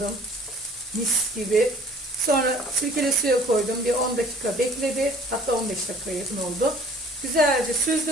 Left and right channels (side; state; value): both; normal; correlation 0.52